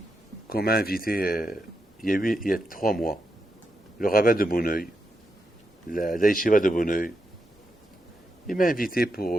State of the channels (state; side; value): normal; both; correlation 0.84